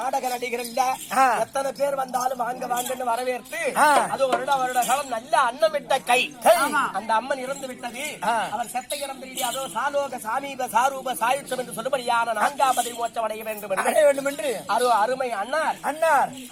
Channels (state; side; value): identical; both; correlation 1.00